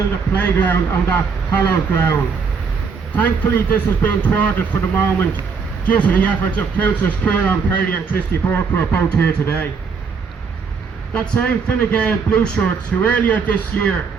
a playground on that hallowed ground. Thankfully, this has been thwarted for the moment due to the efforts of Councillors Kieran Perry and Christy Burke, who are both here today. That same Fine Gael Blue Shirts who earlier this year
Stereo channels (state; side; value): quieter; left; 5.5 dB